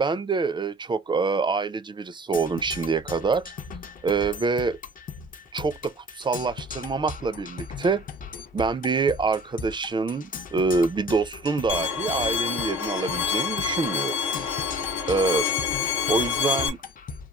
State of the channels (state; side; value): normal; both; correlation 0.47